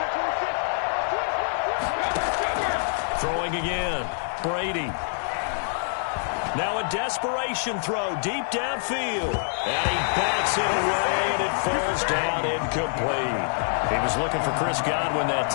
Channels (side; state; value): right; silent; digital silence